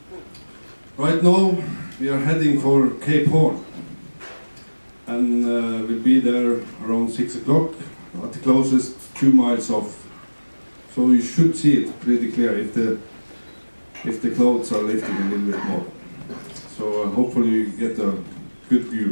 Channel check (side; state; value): both; inverted; correlation -1.00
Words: Right now we are heading for Cape Horn, and we'll be there around 6 o'clock at the closest 2 miles off. So you should see it pretty clear if the clouds are lifting a little bit more. So hopefully you get a good